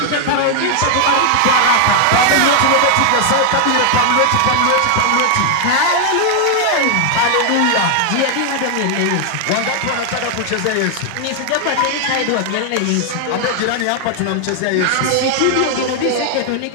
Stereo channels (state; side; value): different; both; correlation 0.00